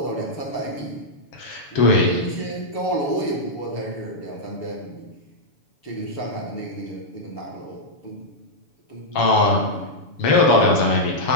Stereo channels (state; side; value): late; right; 7.0 ms